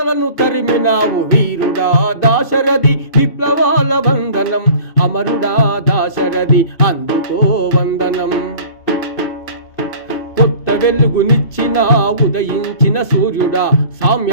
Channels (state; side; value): late; right; 2.6 ms